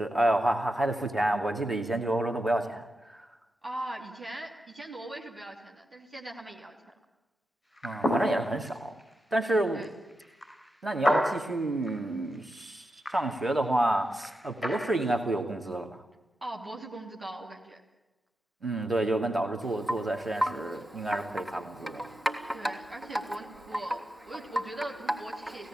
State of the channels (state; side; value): normal; both; correlation 0.87